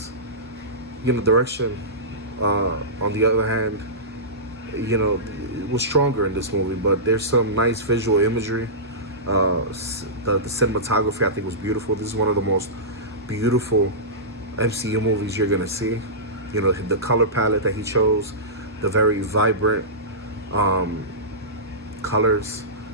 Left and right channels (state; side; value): normal; both; correlation -0.18